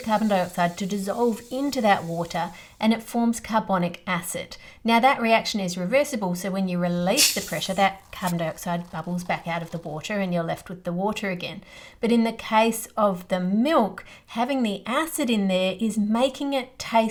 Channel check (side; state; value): both; identical; correlation 1.00